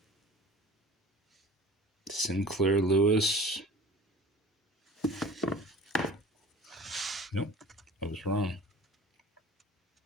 Sinclair Lewis. Nope, I was wrong.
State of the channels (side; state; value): both; normal; correlation 0.43